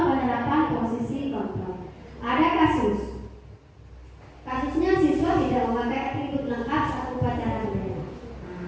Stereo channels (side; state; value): both; identical; correlation 1.00